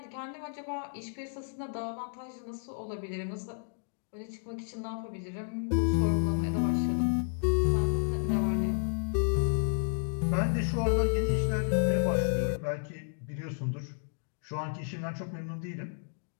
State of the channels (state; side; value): silent; right; digital silence